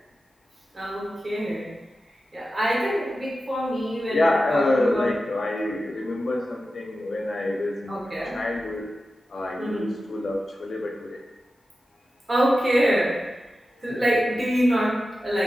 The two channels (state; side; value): normal; both; correlation 0.93